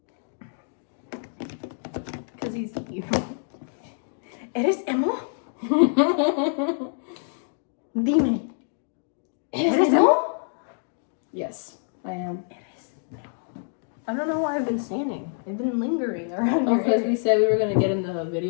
Because he's evil. ¿Eres emo? Dime. ¿Eres emo? Yes, I am. I don't know why I've been standing. I've been lingering around Oh, your because area. we said we were gonna get in the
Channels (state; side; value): silent; right; 61 dB below the other